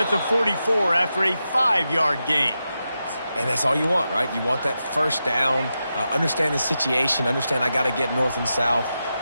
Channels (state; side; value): inverted; both; correlation -0.89